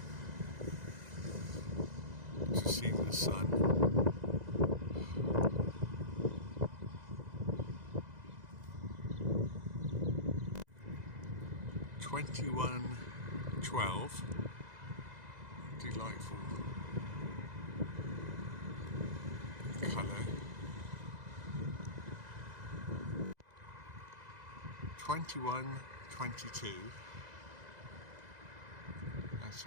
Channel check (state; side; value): late; left; 2.0 ms